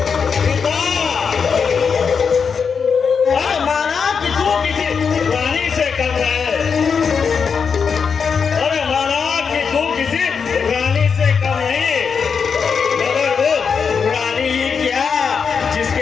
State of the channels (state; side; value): quieter; right; 6.1 dB